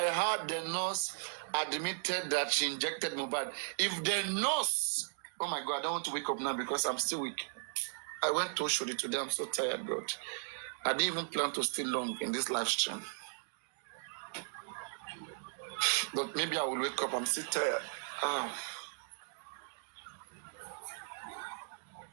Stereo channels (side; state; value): left; silent; digital silence